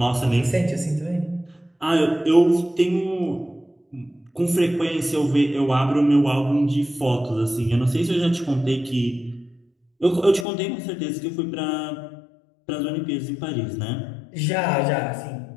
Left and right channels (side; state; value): right; drops out; at 10.5 s